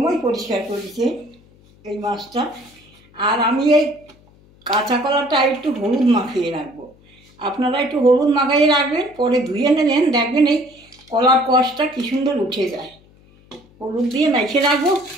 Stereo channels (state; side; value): noise; left; hum, 28 dB below the sound